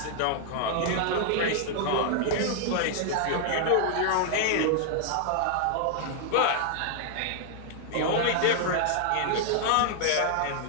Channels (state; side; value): different; both; correlation -0.01